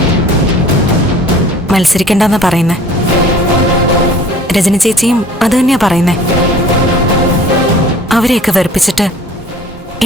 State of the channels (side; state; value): both; normal; correlation 0.49